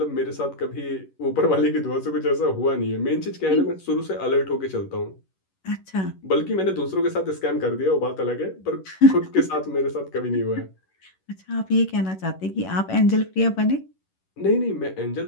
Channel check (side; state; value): right; late; 11 ms